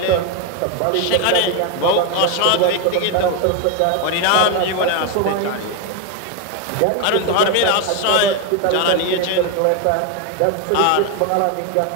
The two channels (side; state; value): both; different; correlation 0.01